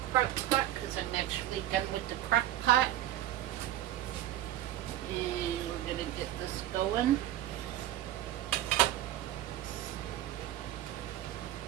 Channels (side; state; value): left; quieter; 13.3 dB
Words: crock pot because I'm actually done with the crock pot. And we're going to get this going.